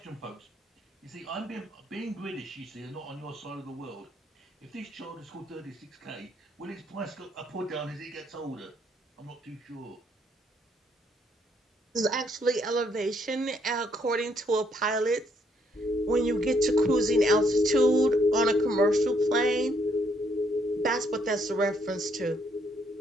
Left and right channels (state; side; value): normal; both; correlation 0.71